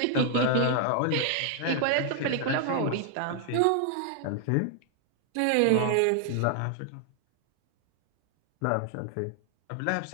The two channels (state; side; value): different; both; correlation 0.00